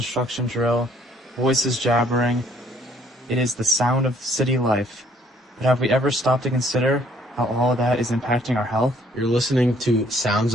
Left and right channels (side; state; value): both; normal; correlation 0.63